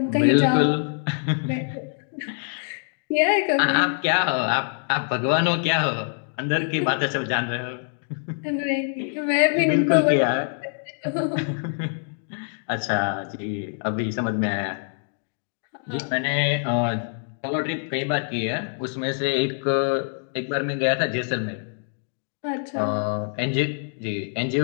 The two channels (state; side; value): silent; right; digital silence